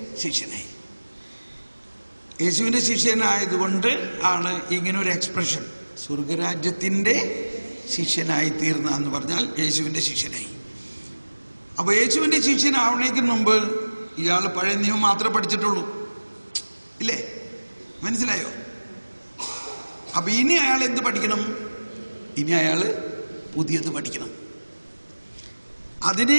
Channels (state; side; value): inverted; both; correlation -1.00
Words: യേശുവിൻ്റെ ശിഷ്യനായതുകൊണ്ട് ആണ് ഇങ്ങനെ ഒരു എക്സ്പ്രഷൻ, സ്വർഗരാജ്യത്തിൻ്റെ ശിഷ്യനായി തീർന്ന എന്ന് പറഞ്ഞാൽ യേശുവിൻ്റെ ശിഷ്യനായി. അപ്പോൾ യേശുവിൻ്റെ ശിഷ്യനാവണേക്ക് മുമ്പ് ഇയാൾ പഴയ നിയമം മാത്രമേ പഠിച്ചിട്ടുള്ളൂ, ഇല്ലേ? മനസ്സിലായോ? അപ്പൊ ഇനി അയാൾ എന്ത് പഠിക്കണം? ഇനി അയാൾ പുതിയത് പഠിക്കണം.